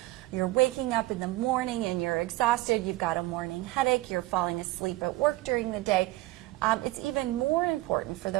you're waking up in the morning and you're exhausted, you've got a morning headache, you're falling asleep at work during the day, it's even more important for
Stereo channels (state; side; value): quieter; left; 18.7 dB